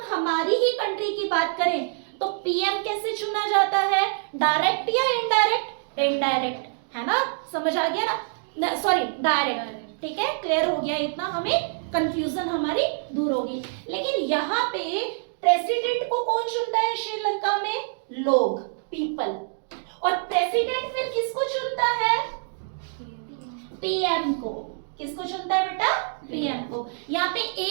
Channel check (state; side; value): silent; left; digital silence